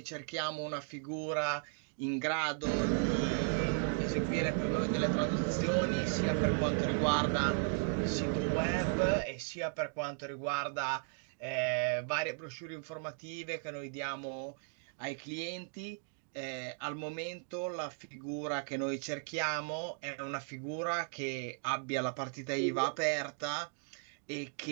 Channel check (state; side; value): silent; left; 54 dB below the other